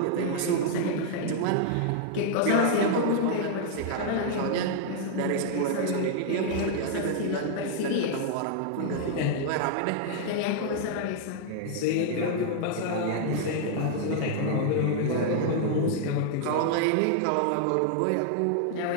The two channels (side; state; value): both; different; correlation -0.01